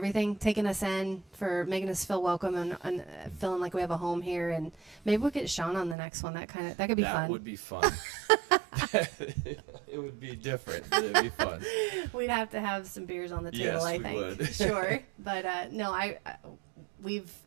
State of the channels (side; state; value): left; drops out; at 6.0 s